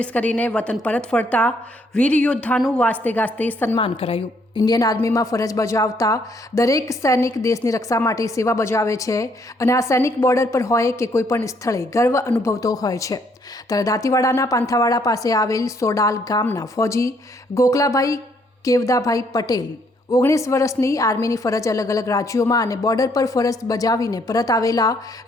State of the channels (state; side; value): normal; both; correlation 0.69